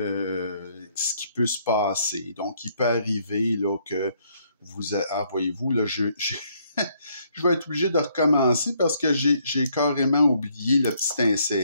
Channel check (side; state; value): both; inverted; correlation -0.69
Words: ce qui peut se passer. Donc, il peut arriver là, que voyez-vous, là, je vais être obligé de recommencer parce que j'ai carrément oublié le petit